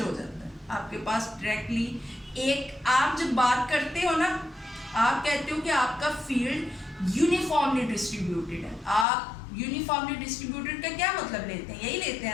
हो जाता है आपके पास डायरेक्टली। एक आप जब बात करते हो ना, आप कहते हो कि आपका फील्ड यूनिफॉर्मली डिस्ट्रीब्यूटेड है। आप यूनिफॉर्मली डिस्ट्रीब्यूटेड का क्या मतलब लेते हैं, यही लेते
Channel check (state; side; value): drops out; right; at 9.1 s